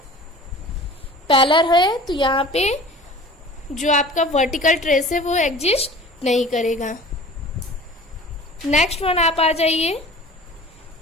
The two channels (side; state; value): both; normal; correlation 0.42